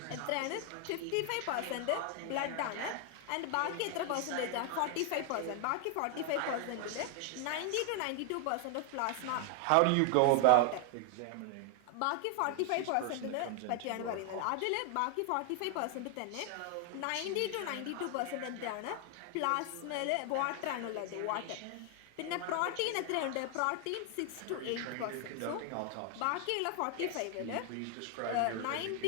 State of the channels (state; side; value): different; both; correlation 0.00